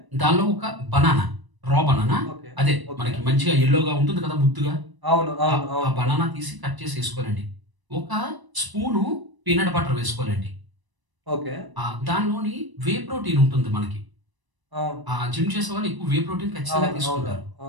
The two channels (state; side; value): late; left; 1.0 ms